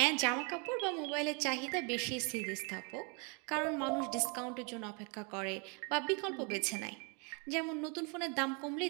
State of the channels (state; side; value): quieter; left; 34.2 dB